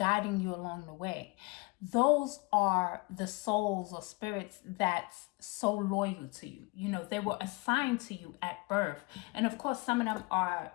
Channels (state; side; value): quieter; right; 26.2 dB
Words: you along the way. Those are the souls or spirits that's so loyal to you. You know, they were assigned to you at birth. And of course, some of them are,